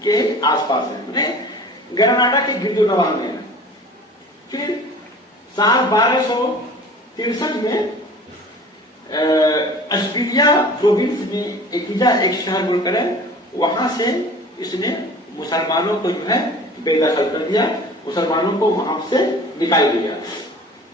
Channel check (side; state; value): both; normal; correlation 0.43